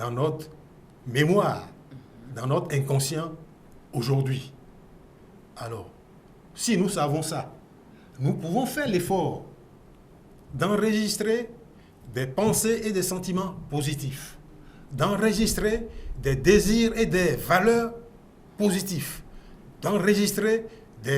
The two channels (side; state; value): both; identical; correlation 1.00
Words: notre mémoire, dans notre inconscient aujourd'hui. Alors, si nous savons ça, nous pouvons faire l'effort d'enregistrer des pensées et des sentiments positifs, d'enregistrer des désirs et des valeurs positifs, d'enregistrer